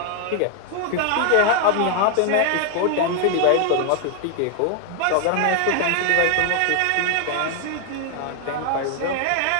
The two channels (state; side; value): different; both; correlation 0.00